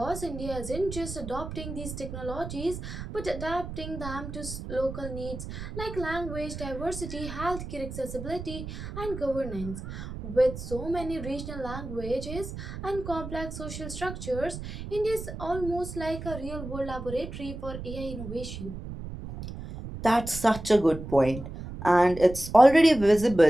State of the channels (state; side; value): noise; right; rumble, 9 dB below the sound